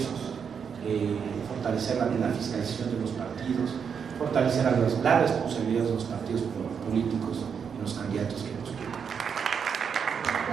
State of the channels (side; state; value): left; quieter; 6.8 dB